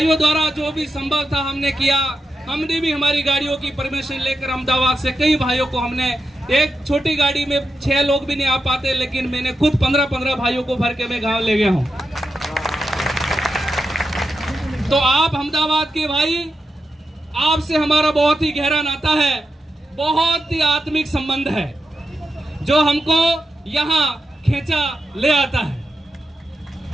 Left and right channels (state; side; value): normal; both; correlation 0.88